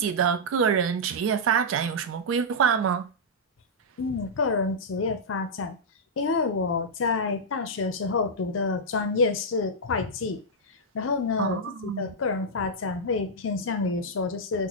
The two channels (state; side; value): normal; both; correlation -0.08